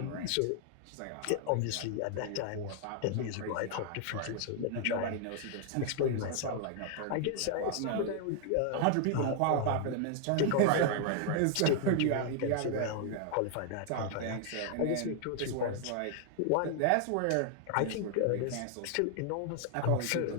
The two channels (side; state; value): both; different; correlation 0.00